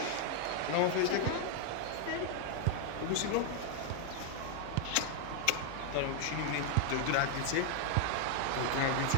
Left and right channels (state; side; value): different; both; correlation 0.00